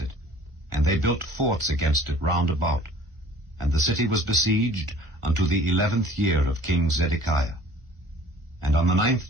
And they built forts against it round about. And the city was besieged unto the 11th year of King Zedekiah. And on the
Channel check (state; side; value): late; left; 1.5 ms